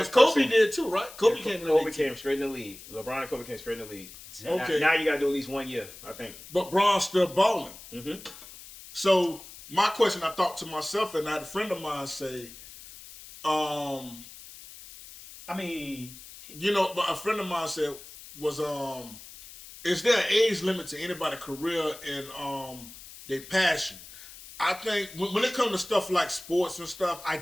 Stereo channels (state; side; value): noise; left; hiss, 17 dB below the sound